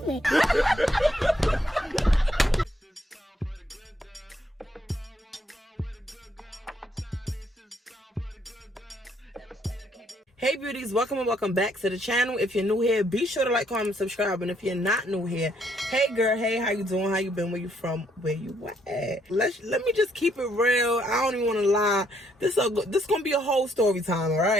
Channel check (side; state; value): both; normal; correlation 0.71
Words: me. Hey beauties, welcome and welcome back to the channel. If you're new here, be sure to like, comment, subscribe. And if you're not new here, hey girl, hey, how you doing? How you been? Where you from? Where you at? Let me just keep it real. I don't even want to lie. This gonna be a whole story time, all